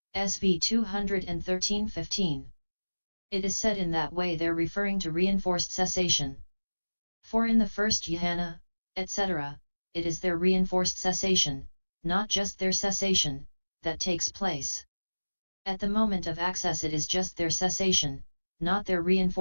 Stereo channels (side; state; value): both; inverted; correlation -1.00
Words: SV 213:15. It is said in that way there referring to reinforced cessation. For in the first jhana, etc., it is their reinforced cessation, not just their cessation, that takes place. At the moment of access it is just their cessation, not their